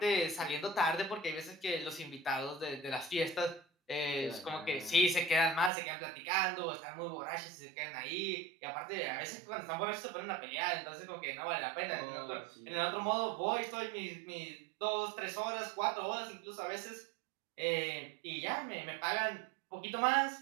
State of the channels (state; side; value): drops out; left; at 5.7 s